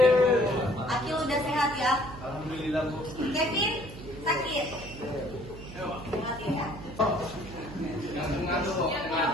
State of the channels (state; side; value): noise; right; hum, 14 dB below the sound